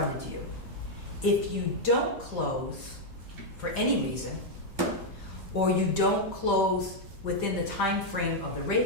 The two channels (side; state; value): both; normal; correlation -0.01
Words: to you. If you don't close for any reason, or you don't close within the time frame of the